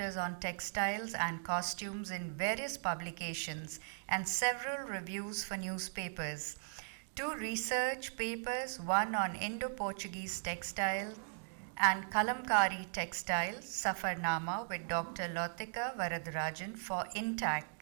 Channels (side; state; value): left; silent; digital silence